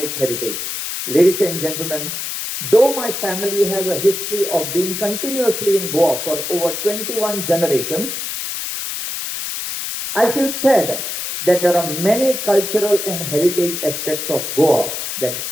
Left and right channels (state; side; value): noise; left; hiss, 4 dB below the sound